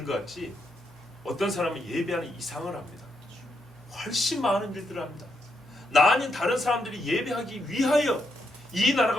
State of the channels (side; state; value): both; normal; correlation 0.80